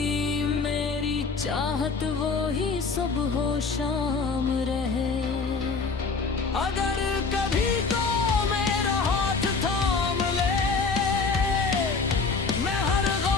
मेरी चाहत वो ही सुबह हो शाम रहे। अगर कभी तो मेरा हाथ थाम ले, मैं हर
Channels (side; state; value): right; quieter; 4.6 dB